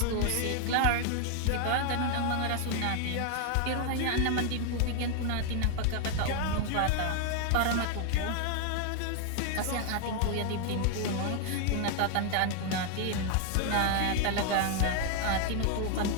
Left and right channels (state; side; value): different; both; correlation 0.00